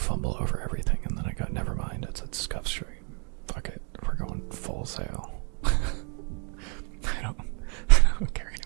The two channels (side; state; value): left; quieter; 38.8 dB